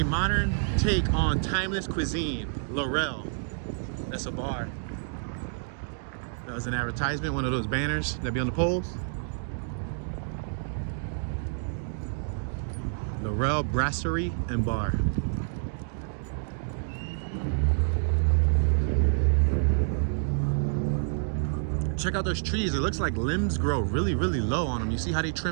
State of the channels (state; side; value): silent; left; digital silence